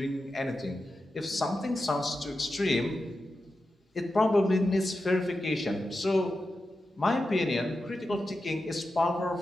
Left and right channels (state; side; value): normal; both; correlation 0.91